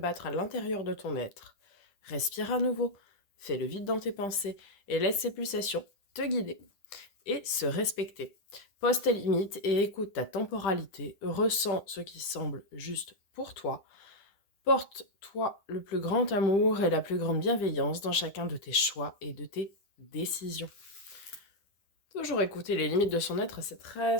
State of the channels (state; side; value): late; right; 10 ms